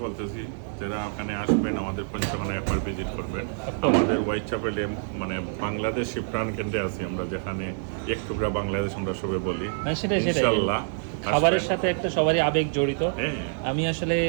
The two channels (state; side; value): silent; left; digital silence